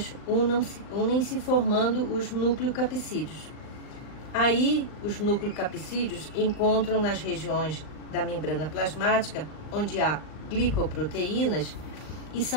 unem-se formando os nucleocapsídeos. Aí, os nucleocapsídeos encontram nas regiões da membrana plasmática, onde há glicoproteínas, e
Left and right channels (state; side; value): late; right; 39 ms